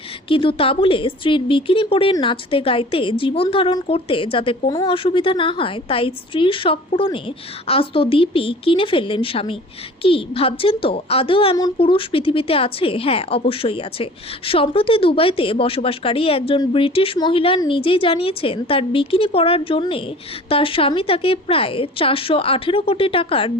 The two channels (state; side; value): normal; both; correlation 0.44